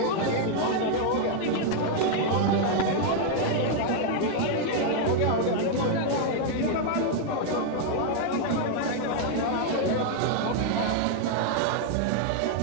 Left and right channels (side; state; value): both; different; correlation 0.00